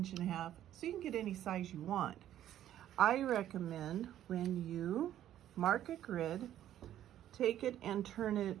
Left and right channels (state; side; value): quieter; left; 11.8 dB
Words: inches. So you can get any size you want. I recommend when you mark a grid, take it and turn